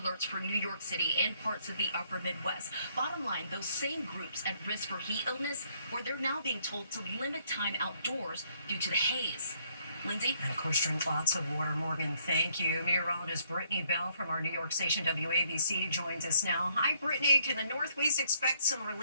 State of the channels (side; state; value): both; inverted; correlation -0.68